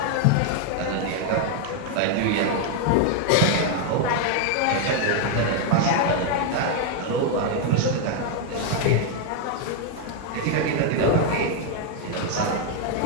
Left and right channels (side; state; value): both; different; correlation 0.00